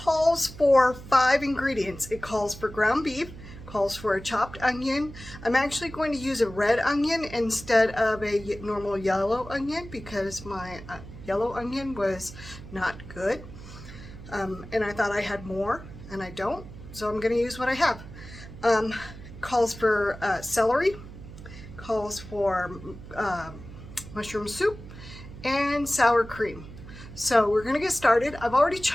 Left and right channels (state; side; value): noise; right; hum, 15 dB below the sound